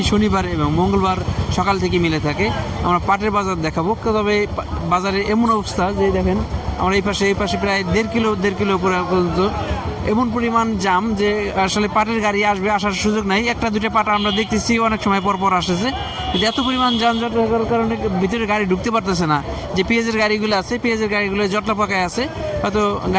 শনিবার এবং মঙ্গলবার সকাল থেকে মিলে থাকে। আমরা পাটের বাজার দেখাবো, তবে বাজারের এমন অবস্থা যে দেখেন আমরা এই পাশে প্রায় দেড় কিলো উপরে পর্যন্ত এমন পরিমাণ জাম যে আসলে পাটের গাড়ি আসার সুযোগ নাই। একটা দুটো পাট আমরা দেখতেছি অনেক সময় পর আসতেছে, কিন্তু এত পরিমাণ যানজট হওয়ার কারণে ভিতরে গাড়ি ঢুকতে পারতেছে না। যে পেঁয়াজের গাড়িগুলো আছে, পেঁয়াজের গাড়িগুলো জটলা পাকায় আছে, হয়তো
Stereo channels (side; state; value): both; identical; correlation 1.00